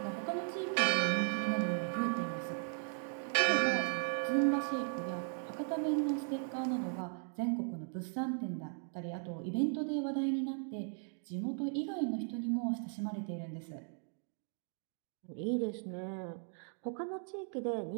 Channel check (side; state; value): left; silent; 53 dB below the other